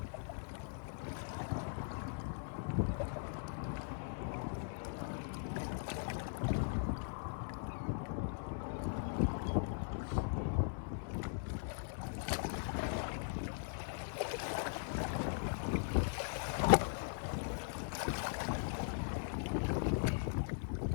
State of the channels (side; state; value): right; silent; 51 dB below the other